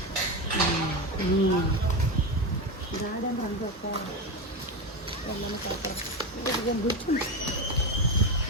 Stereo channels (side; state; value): both; normal; correlation 0.17